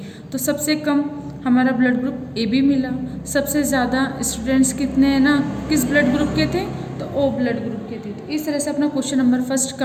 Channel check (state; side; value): identical; both; correlation 1.00